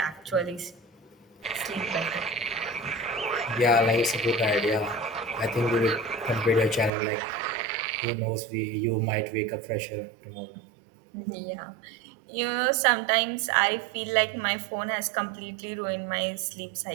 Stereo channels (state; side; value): drops out; left; at 6.9 s